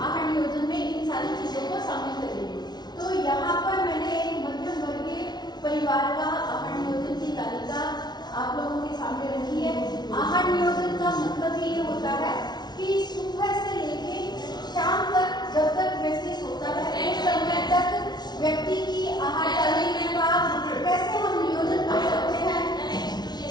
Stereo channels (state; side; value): late; right; 0.20 ms